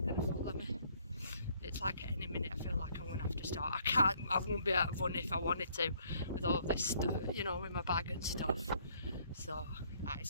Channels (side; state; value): both; inverted; correlation -0.65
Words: going to follow me? It's like at any minute I feel like I'm going to have to start. I won't be able to run if I wanted to with all this stuff, you know, with my bag and stuff. So that is